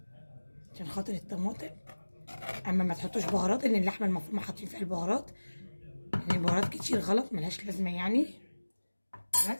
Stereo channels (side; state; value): both; inverted; correlation -1.00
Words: عشان خاطر الطماطم. اما ما تحطوش بهارات، ان اللحمه المفرومه حاطين فيها البهارات، يعني البهارات كتير غلط ملهاش لازمه يعني.